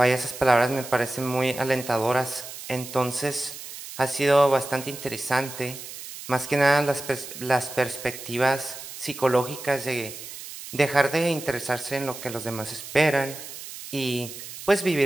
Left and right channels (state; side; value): noise; right; hiss, 12 dB below the sound